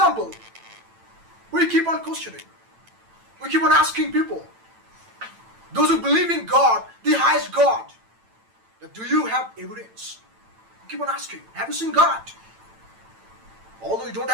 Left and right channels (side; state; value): left; late; 9.0 ms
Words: we keep on questioning. We keep on asking people, those who believe in God, the highest God, that do you have evidence? We keep on asking, have you seen God? Although you don't